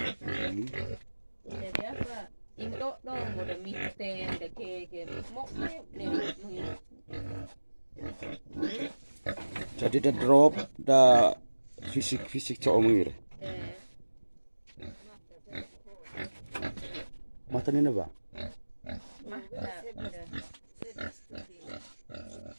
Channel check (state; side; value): inverted; both; correlation -1.00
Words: Jadi apa? Indo dong, udah mite, udah keke, mau Jadi dah drop, dah fisik cowok mengir. Mata ni apa?